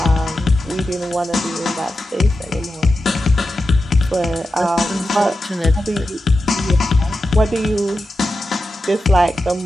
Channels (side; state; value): both; normal; correlation 0.90